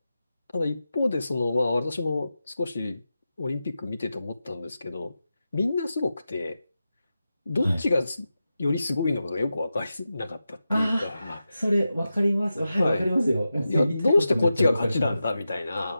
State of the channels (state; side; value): inverted; both; correlation -0.91